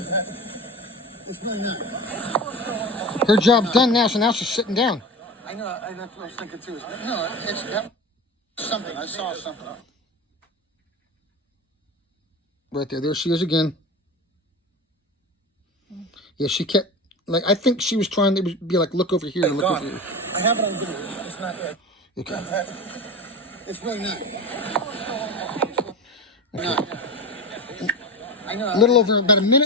Her job's done now, so now she's sitting down. I know. That's what I was thinking too. No, it's something. I saw something. Right there. There she is again. Yeah, she kept, like, I think she was trying to be like, look over here and look over here. I have it on video. It's not there. Okay. It's really not. Okay. I know. A little over about a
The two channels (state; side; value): normal; both; correlation 0.27